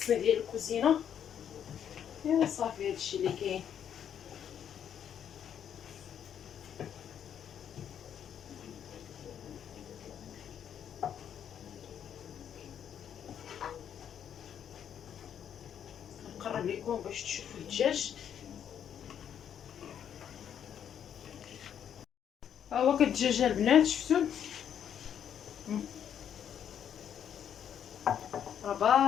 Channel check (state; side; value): quieter; right; 9.0 dB